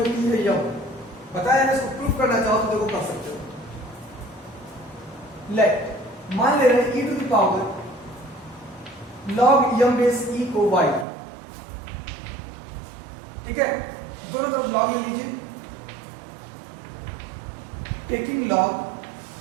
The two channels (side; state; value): left; drops out; at 11.1 s